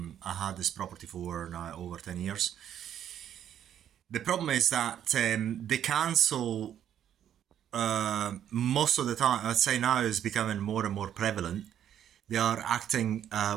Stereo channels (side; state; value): left; quieter; 10.1 dB